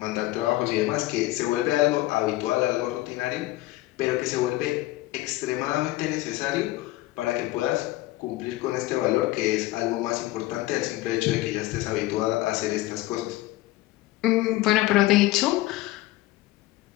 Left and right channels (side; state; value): right; quieter; 17.8 dB